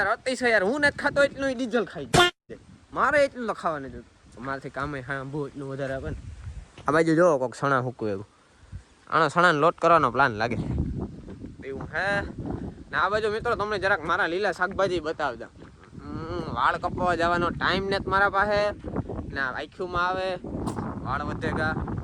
અતિશય યાર. હું નથી ખાતો એટલું ડીઝલ ખાઈ જાય. મારે એટલું તો ખાવા નથી. મારાથી કામે હા બહુ એટલું વધારે આપે ને. આ બાજુ જોવો કોઈક સણા હૂકવું એવું. આનો સણાને લોટ કરવાનો પ્લાન લાગે એવું હે ને. આ બાજુ મિત્રો તમને જરાક મારા લીલા શાકભાજી બતાવતા. વાળ કપાવવા જવાનો ટાઈમ નથી મારા પાસે ને. આખીમાં આવે વાળ વધેગા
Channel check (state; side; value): identical; both; correlation 1.00